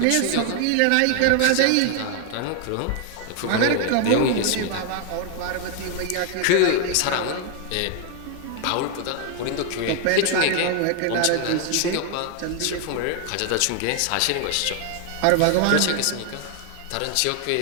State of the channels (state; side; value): different; both; correlation 0.00